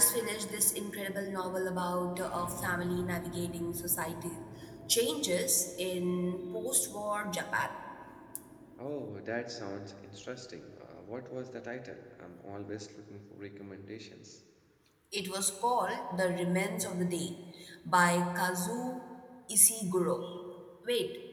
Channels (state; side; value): identical; both; correlation 1.00